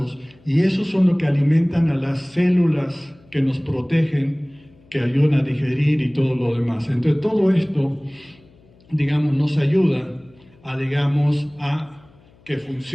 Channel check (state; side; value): noise; left; hum, 29 dB below the sound